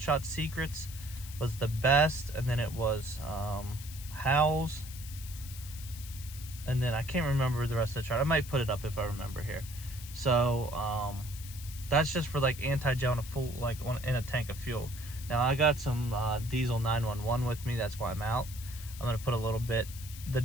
Shot Secrets was the best, and then it was Howell's, and then I can't remember the rest of the chart. I might put it up if I remember here. So that's just for like anti-gel in a full, like in a tank of fuel. Now I got some diesel 911 with me. That's why I'm out. I'm gonna put a little bit. The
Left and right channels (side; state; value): left; noise; hiss, 14 dB below the sound